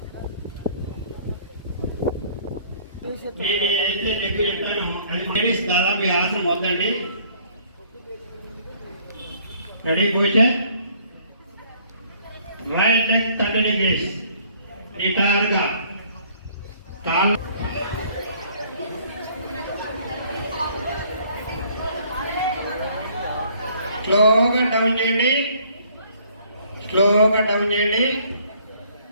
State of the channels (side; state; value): both; inverted; correlation -0.59